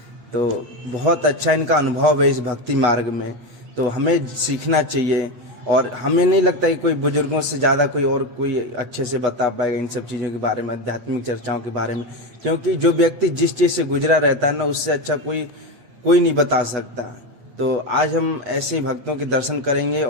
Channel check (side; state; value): left; late; 8.2 ms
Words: तो बहुत अच्छा इनका अनुभव है इस भक्ति मार्ग में, तो हमें सीखना चाहिए। और हमें नहीं लगता कि कोई बुजुर्गों से ज़्यादा कोई और कोई अच्छे से बता पाएगा इन सब चीज़ों के बारे में, आध्यात्मिक चर्चाओं के बारे में, क्योंकि जो व्यक्ति जिस चीज़ से गुजरा रहता है ना उससे अच्छा कोई नहीं बता सकता। तो आज हम ऐसे भक्तों के दर्शन करेंगे